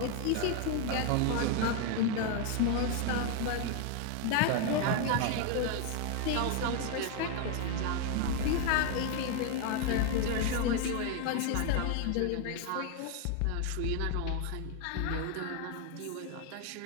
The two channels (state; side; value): different; both; correlation 0.01